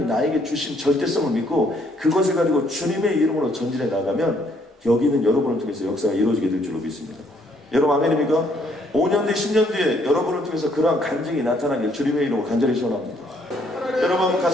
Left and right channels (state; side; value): normal; both; correlation 0.67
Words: 나에게 주신 절대성을 믿고 그것을 가지고 주님의 이름으로 전진해 나가면 여기는 여러분을 통해서 역사가 이루어지게 될 줄로 믿습니다. 여러분 아멘입니까? 5년 뒤 10년 뒤에 여러분을 통해서 그러한 간증이 나타나길 주님의 이름으로 간절히 소원합니다. 여러분